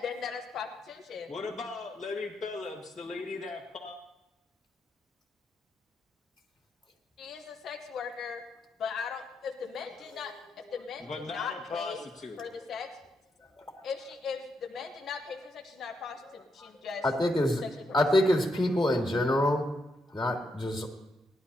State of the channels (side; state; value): both; normal; correlation 0.80